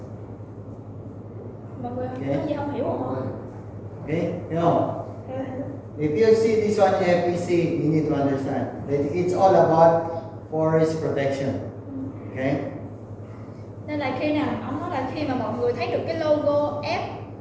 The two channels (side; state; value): both; identical; correlation 1.00